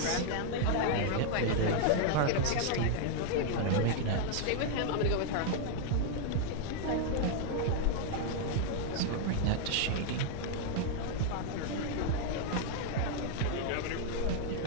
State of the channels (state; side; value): different; both; correlation 0.00